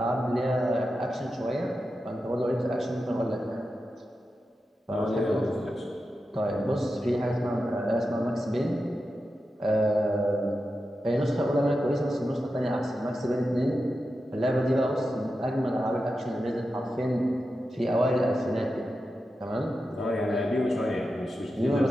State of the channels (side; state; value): both; normal; correlation 0.90